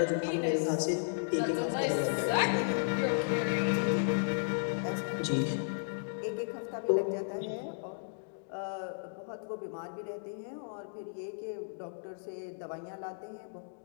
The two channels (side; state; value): right; silent; digital silence